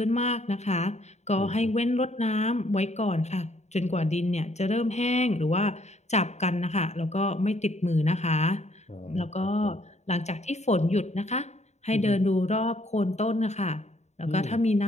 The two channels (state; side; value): late; right; 0.32 ms